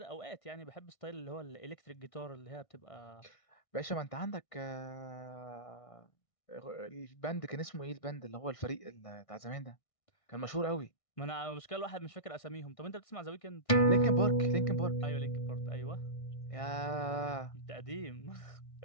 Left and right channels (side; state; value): right; late; 1.6 ms